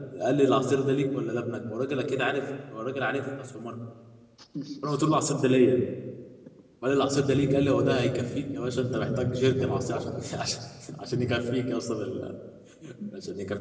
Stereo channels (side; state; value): both; identical; correlation 1.00